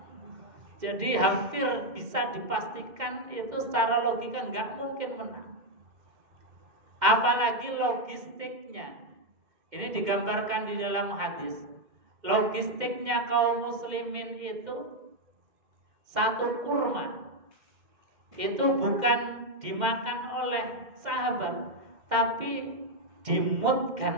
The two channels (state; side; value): late; left; 2.1 ms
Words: Jadi hampir bisa dipastikan itu secara logika nggak mungkin menang. Apalagi logistiknya. Ini digambarkan di dalam hadis. Logistiknya kaum muslimin itu, satu kurma itu bukan dimakan oleh sahabat, tapi dimut